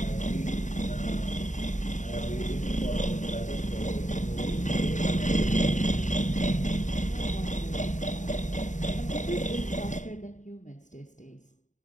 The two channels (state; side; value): late; right; 0.36 ms